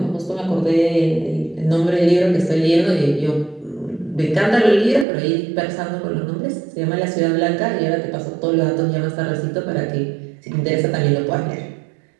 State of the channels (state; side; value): drops out; left; at 5.1 s